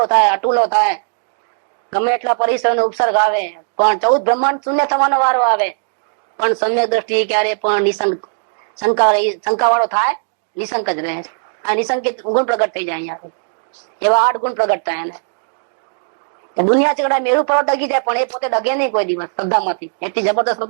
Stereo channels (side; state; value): left; silent; digital silence